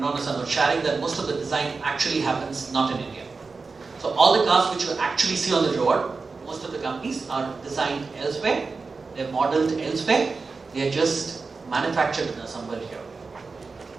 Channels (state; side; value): quieter; left; 4.3 dB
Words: Nissan was sharing that most of the design actually happens not in India. So all the cars which you actually see on the road, most of the companies are designed elsewhere, they're modeled elsewhere, they are just manufactured and assembled here.